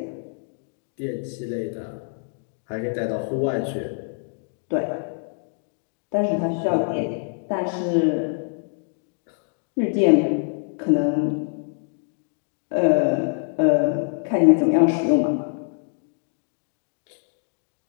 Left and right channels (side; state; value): right; silent; digital silence